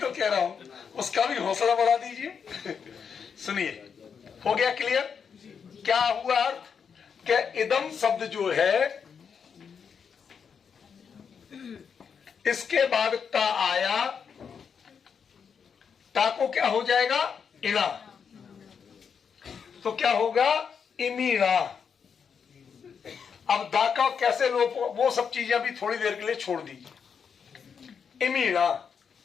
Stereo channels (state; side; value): quieter; right; 6.6 dB